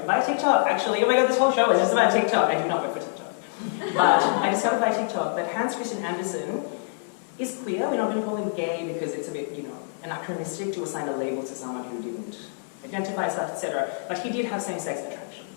by TikTok, actually. Oh my god, this whole show is just about TikTok. I do not work for TikTok. But I discovered by TikTok that Hans Christian Andersen is queer. We're not going to call him gay because it's a bit, you know, anachronistic to assign a label to someone who didn't identify as such, etc. But he did have same-sex attraction.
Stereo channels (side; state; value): right; silent; digital silence